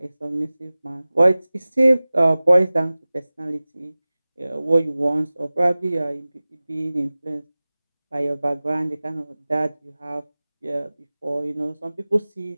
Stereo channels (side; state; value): both; inverted; correlation -0.98